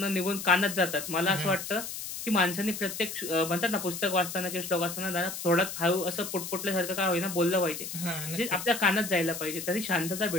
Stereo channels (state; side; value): noise; left; hiss, 7 dB below the sound